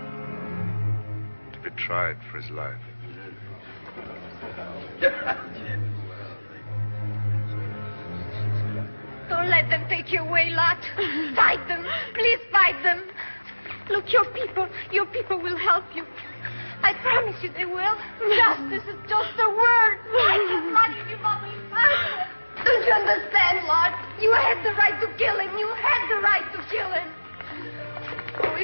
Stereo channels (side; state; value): both; inverted; correlation -1.00